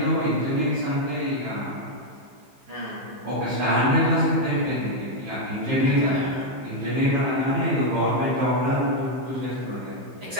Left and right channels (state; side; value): late; left; 15 ms